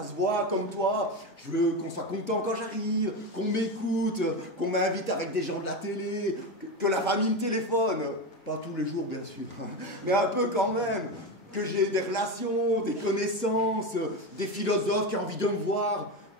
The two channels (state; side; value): normal; both; correlation 0.17